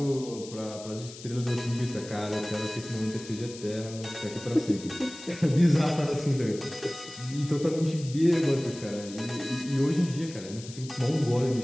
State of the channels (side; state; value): left; noise; hiss, 15 dB below the sound